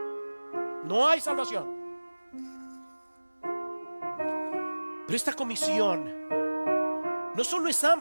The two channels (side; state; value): both; inverted; correlation -1.00